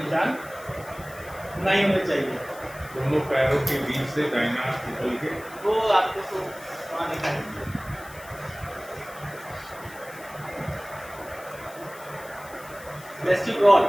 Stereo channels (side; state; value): left; noise; hiss, 19 dB below the sound